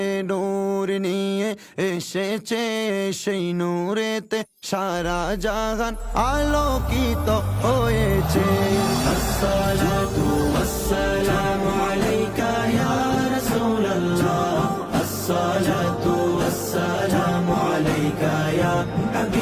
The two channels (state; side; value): identical; both; correlation 1.00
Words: নূর নিয়ে এসেছে, সেই নূরেতে সারা জাহান আলোকিত হয়েছে। আসসালাতু ওয়াসসালামু আলাইকা ইয়া রাসূলুল্লাহ, আসসালাতু ওয়াসসালামু আলাইকা ইয়া